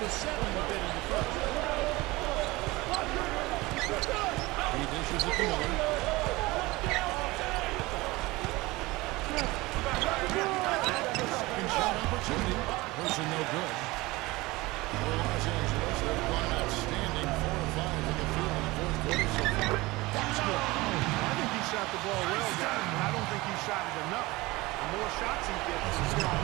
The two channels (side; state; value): left; quieter; 21.3 dB